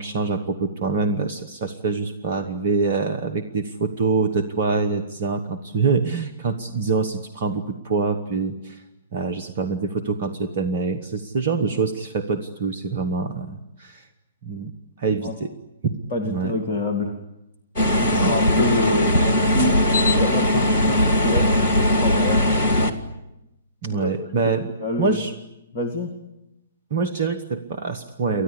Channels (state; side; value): inverted; both; correlation -0.42